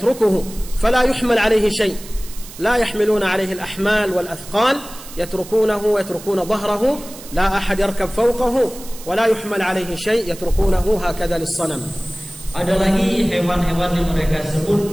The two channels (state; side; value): noise; right; hiss, 16 dB below the sound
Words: فلا يحمل عليه شيء، لا يحملون عليه الأحمال والأثقال، يتركون ظهره، لا أحد يركب فوقه ولا يحمل عليه شيء، يتركونه هكذا للصنم. Ada lagi hewan-hewan yang mereka